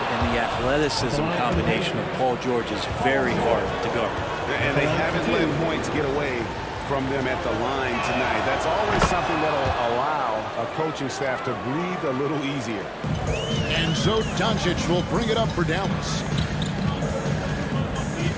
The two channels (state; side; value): identical; both; correlation 1.00